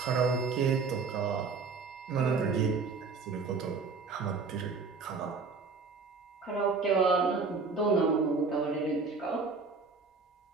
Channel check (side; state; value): left; quieter; 4.7 dB